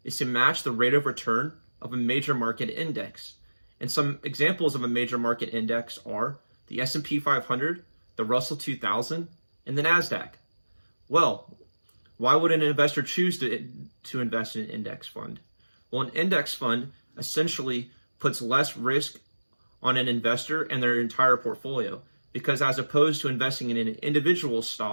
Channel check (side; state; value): both; inverted; correlation -1.00